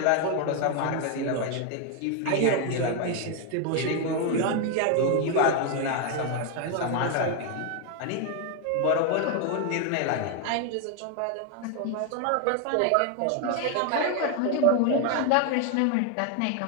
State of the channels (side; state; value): both; different; correlation 0.01